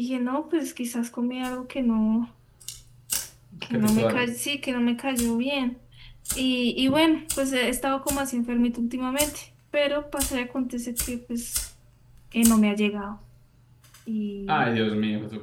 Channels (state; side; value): identical; both; correlation 1.00